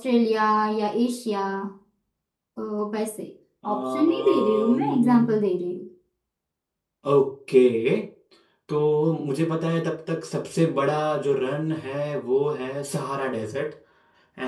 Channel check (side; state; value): both; identical; correlation 1.00